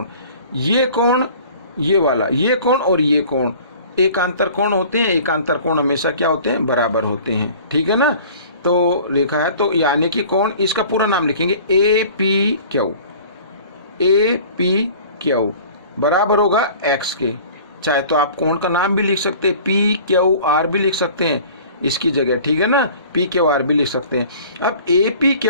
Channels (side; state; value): both; inverted; correlation -0.46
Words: ये कोण ये वाला, ये कोण और ये कोण एकांतर कोण होते हैं। एकांतर कोण हमेशा क्या होते हैं, बराबर होते हैं, ठीक है ना। तो रेखा है, तो यानी कि कोण, इसका पूरा नाम लिखेंगे A P Q, A P Q बराबर होगा एक्स के। चाहे तो आप कोण का नाम भी लिख सकते हैं, पी क्यू आर भी लिख सकते हैं इसकी जगह, ठीक है ना, पी क्यू आर भी लिख सकते हैं। अब ए पी